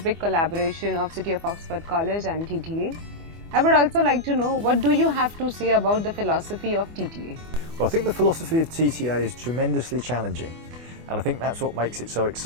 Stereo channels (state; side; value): late; left; 24 ms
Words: collaboration of City of Oxford College and TTA. I would also like to know, what do you have to say about the philosophy of TTA? Well, I think the philosophy of TTA is tremendously challenging, and I think that's what makes it so